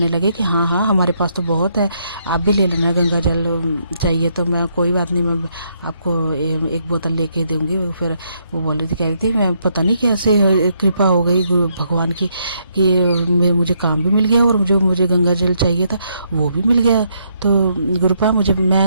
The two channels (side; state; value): both; inverted; correlation -0.74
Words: लगे कि हाँ हाँ हमारे पास तो बहुत है, आप भी ले लेना गंगा जल चाहिए तो। मैं कोई बात नहीं, मैं आपको एक बोतल लेके दूंगी। फिर वो कह रही थी मैं पता नहीं कैसे कृपा हो गई गुरु भगवान की कि मुझे काम भी मिल गया और मुझे गंगा जल चाहिए था वो भी मिल गया। तो गुरुपा